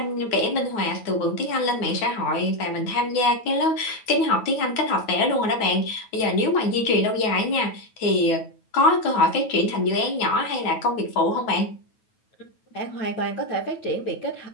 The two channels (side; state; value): right; late; 9.2 ms